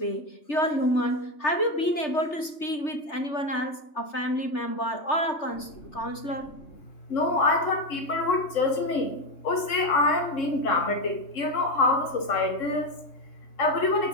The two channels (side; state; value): right; late; 3.3 ms